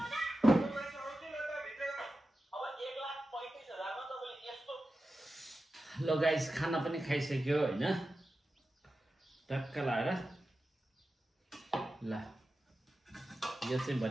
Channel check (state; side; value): normal; both; correlation 0.92